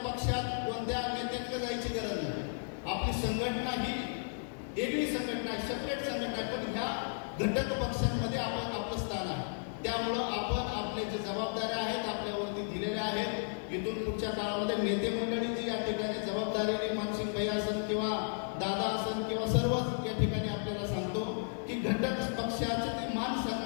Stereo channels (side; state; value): right; silent; digital silence